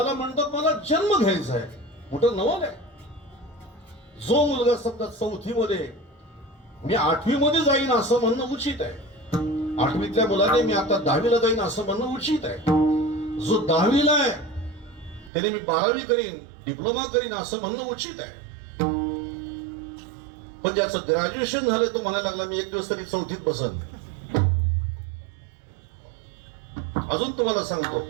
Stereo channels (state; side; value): drops out; left; at 15.3 s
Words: म्हणतात मला जन्म घ्यायचा आहे, मोठं नवल आहे. जो मुलगा समजा 4थी मध्ये मी 8वी मध्ये जाईन असं म्हणणं उचित आहे. 8वीतल्या मुलाने मी आता 10वीला जाईन असं म्हणणं उचित आहे. जो 10वीला आहे त्याने मी 12वी करीन, डिप्लोमा करीन असं म्हणणं उचित आहे. पण ज्याचं ग्रॅज्युएशन झालं तो म्हणायला लागला मी एक दिवस तरी 4थीत बसन. अजून तुम्हाला सांगतो,